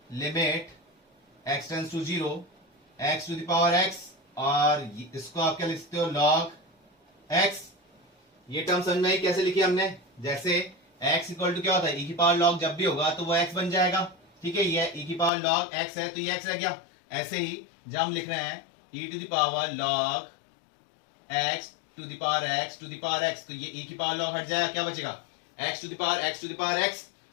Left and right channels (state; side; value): drops out; right; at 15.3 s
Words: limit x tends to zero x to the power x, और इसको आप क्या लिख सकते हो, log x। ये टर्म समझ में आई कैसे लिखी हमने, जैसे x इक्वल टू क्या होता है, e की पावर log जब भी होगा तो वो x बन जाएगा, ठीक है। ये e की पावर log x है तो ये x रह गया। ऐसे ही जब हम लिख रहे हैं e to the power log x to the power x to the power x, तो ये e की पावर log हट जाएगा, क्या बचेगा x to the power x to the power x।